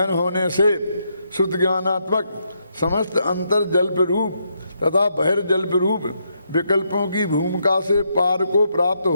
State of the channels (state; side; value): inverted; both; correlation -0.78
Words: होने से शुद्ध ज्ञानात्मक समस्त अंतर जल्प रूप तथा बहिर्जल्प रूप विकल्पों की भूमिका से पार को प्राप्त